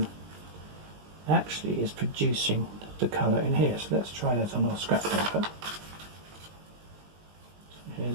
actually is producing the colour in here. So let's try that on our scrap paper. So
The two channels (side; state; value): left; late; 20 ms